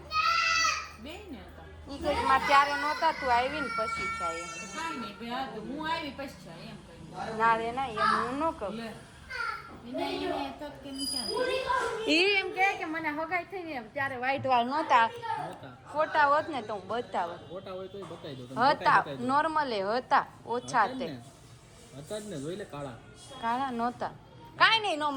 બે ને હતા. ઈ કે મારે ત્યારે નહોતા, તું આવી ને પછી થાય એમ. કાંઈ નહીં બે હા તો હું આવી પછી છે એમ કહ્યું. ના રે ના, એમ હું ન કહું. લે એને તો કેમ ક્યાં ઈ એમ કે મને હગાઈ થઈ ને એમ ત્યારે વ્હાઈટ વાળ નહોતા. ફોટા હોત ને તો હું બતાવત. ફોટા હોય તો બતાવી દો. હતા નોર્મલે હતા, ઓછા તે હતા જ ને, જોઈ લે કાળા. કાળા નહોતા. કાંઈ નહીં નો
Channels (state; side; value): identical; both; correlation 1.00